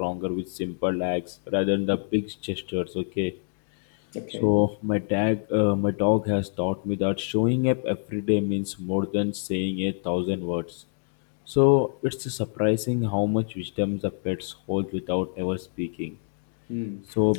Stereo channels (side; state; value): right; silent; digital silence